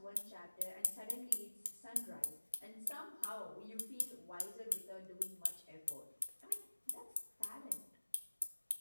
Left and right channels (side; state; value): both; inverted; correlation -1.00